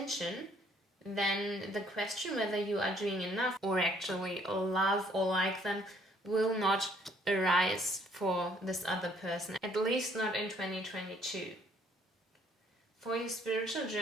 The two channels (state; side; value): normal; both; correlation 0.63